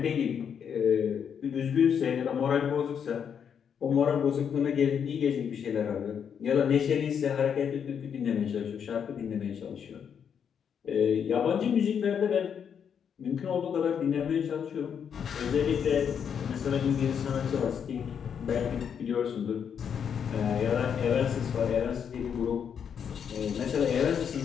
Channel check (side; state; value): right; quieter; 7.7 dB